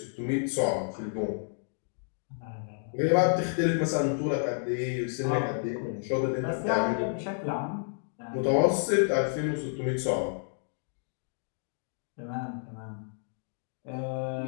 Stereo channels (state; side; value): silent; right; digital silence